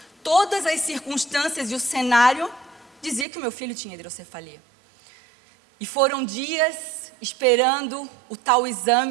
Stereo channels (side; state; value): left; drops out; at 3.2 s